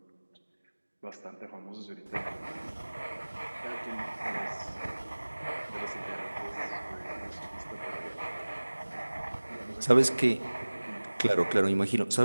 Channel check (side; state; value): both; inverted; correlation -1.00